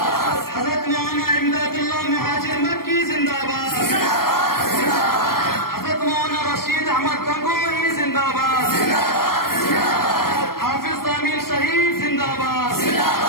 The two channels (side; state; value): right; late; 0.93 ms